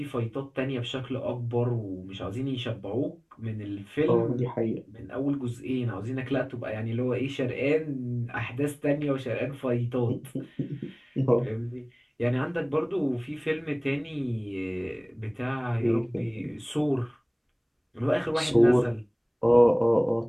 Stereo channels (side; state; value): both; identical; correlation 1.00